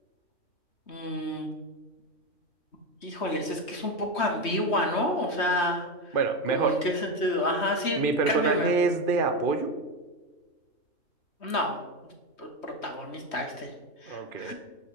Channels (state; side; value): late; right; 3.1 ms